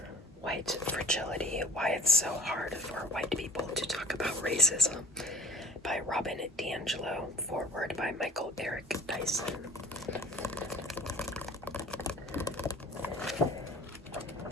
White Fragility, Why It's So Hard for White People to Talk About Racism by Robin D'Angelo, foreword by Michael Eric Dyson.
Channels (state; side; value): normal; both; correlation 0.48